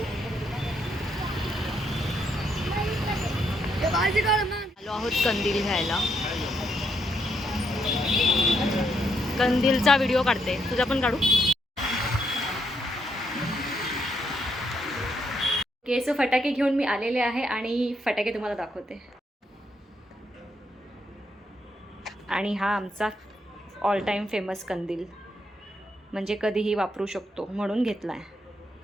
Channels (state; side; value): normal; both; correlation 0.76